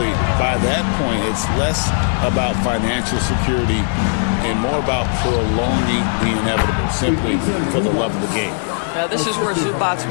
by that point, it's less about financial security and more about prolonging the inevitable, simply for the love of the game. Now, this is where Zubac's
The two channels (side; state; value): right; silent; digital silence